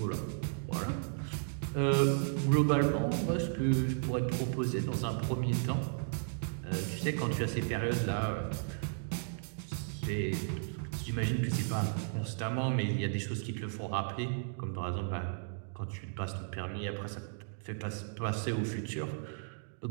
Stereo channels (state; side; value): silent; left; digital silence